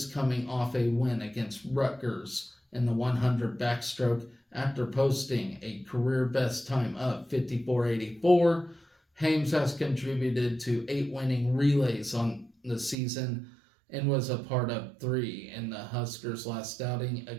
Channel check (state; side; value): drops out; left; at 13.0 s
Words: coming off a win against Rutgers in the 100 backstroke after posting a career best time of 54.84. Hames has contributed to 8 winning relays on the season and was a part of 3 in the Huskers' last outing